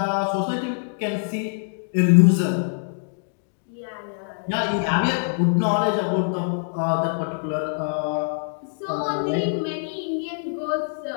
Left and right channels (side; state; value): right; silent; digital silence